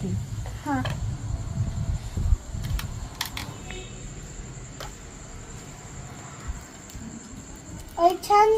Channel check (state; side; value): identical; both; correlation 1.00